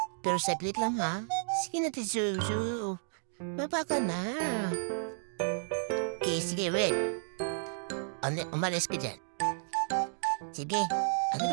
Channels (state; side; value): silent; left; digital silence